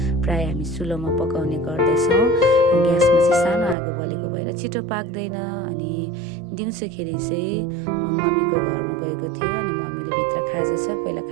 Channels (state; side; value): drops out; left; at 3.8 s